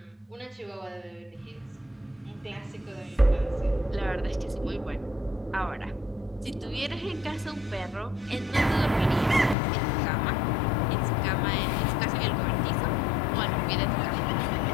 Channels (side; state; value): right; drops out; at 9.6 s